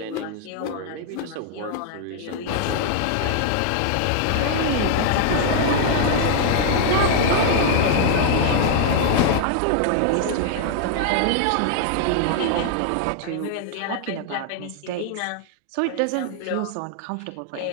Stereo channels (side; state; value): both; different; correlation 0.00